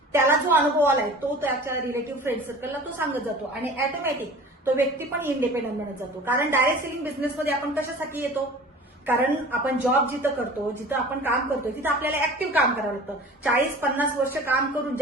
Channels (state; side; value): normal; both; correlation 0.41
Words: त्याला जो अनुभव आलाय तो त्याच्या रिलेटिव्ह फ्रेंड सर्कलला तो सांगत जातो आणि ऑटोमॅटिक तो व्यक्ती पण इंडिपेंडंट बनत जातो। कारण डायरेक्ट सेलिंग बिझनेसमध्ये आपण कशासाठी येतो, कारण आपण जॉब जिथं करतो, जिथं आपण काम करतो तिथं आपल्याला ऍक्टिव्ह काम करावं लागतं। 40-50 वर्ष काम करून